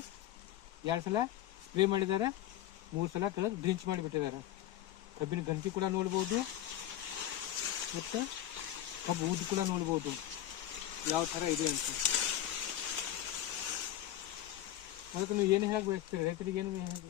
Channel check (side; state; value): right; quieter; 12.6 dB